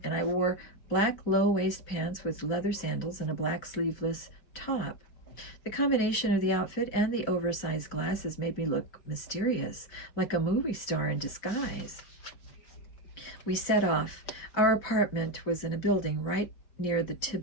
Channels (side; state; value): right; late; 4.0 ms